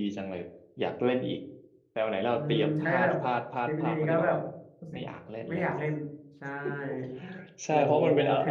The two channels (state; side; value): identical; both; correlation 1.00